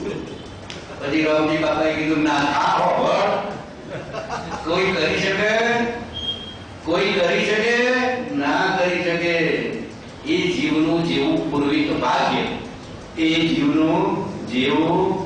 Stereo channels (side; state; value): both; identical; correlation 1.00